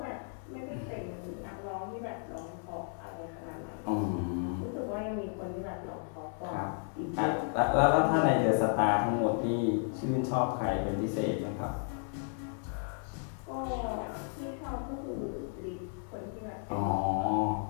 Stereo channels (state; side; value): silent; right; 55 dB below the other